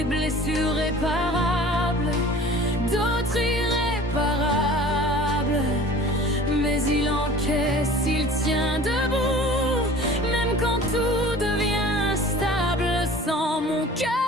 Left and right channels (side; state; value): both; normal; correlation 0.44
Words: blessures réparables, d'autres irréparables. Mais il encaisse, il tient debout, même quand tout devient instable. Sans mon